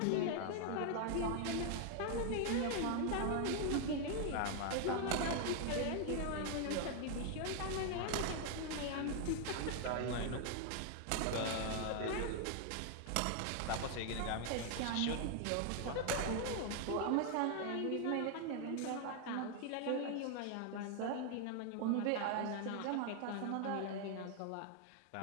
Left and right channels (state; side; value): different; both; correlation 0.00